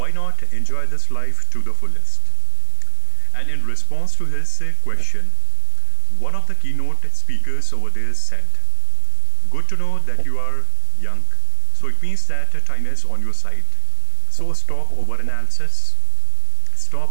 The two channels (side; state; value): both; different; correlation 0.00